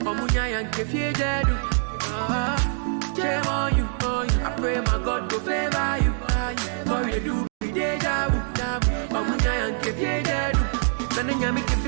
Omunya yanke fie jedu. Shame on you. I pray my God go favor you. What we dey do be deja vu. Omunya yanke fie jedu. Nana nyami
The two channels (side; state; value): left; silent; digital silence